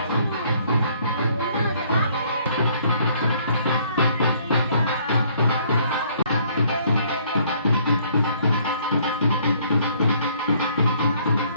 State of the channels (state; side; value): inverted; both; correlation -0.63